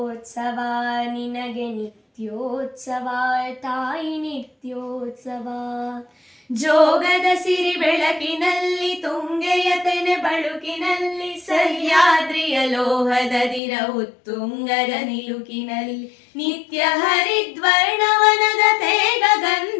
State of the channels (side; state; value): right; drops out; at 13.6 s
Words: ನಿನಗೆ ನಿತ್ಯೋತ್ಸವ ತಾಯಿ ನಿತ್ಯೋತ್ಸವ ಜೋಗದ ಸಿರಿ ಬೆಳಕಿನಲ್ಲಿ ತುಂಗೆಯ ತೆನೆ ಬಳುಕಿನಲ್ಲಿ ಸಹ್ಯಾದ್ರಿಯ ಲೋಹದ ದಿರ ಉತ್ತುಂಗದ ನಿಲುಕಿನಲ್ಲಿ ನಿತ್ಯ ಹರಿದ್ವರ್ಣವನದ ತೇಗ